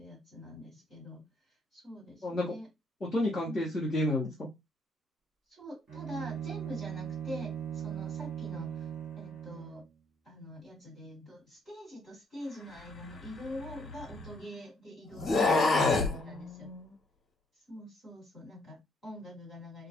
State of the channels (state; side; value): normal; both; correlation 0.68